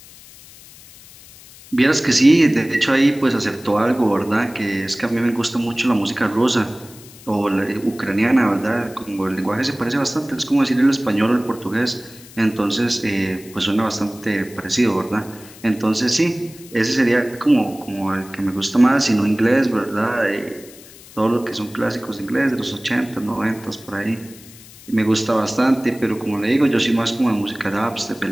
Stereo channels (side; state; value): left; noise; hiss, 21 dB below the sound